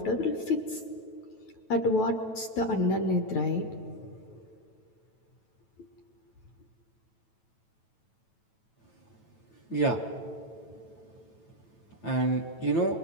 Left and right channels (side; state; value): right; late; 9.1 ms